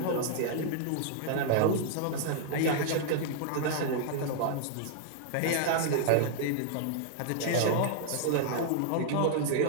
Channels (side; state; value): both; different; correlation -0.01